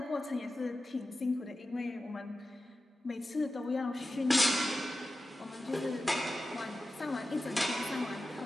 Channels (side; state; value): both; normal; correlation 0.93